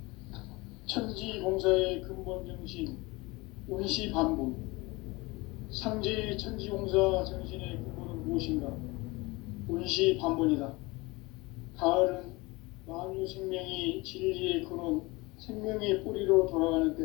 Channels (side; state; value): right; quieter; 23.6 dB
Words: 천지공사의 근본 정신 운시반복. 상제의 천지공사 정신의 근본은 무엇인가? 운시반복이다. 가을은 만유 생명이 진리의 근원, 생명의 뿌리로 돌아가는